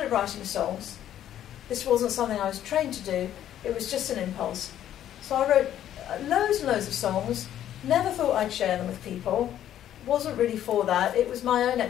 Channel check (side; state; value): right; quieter; 11.3 dB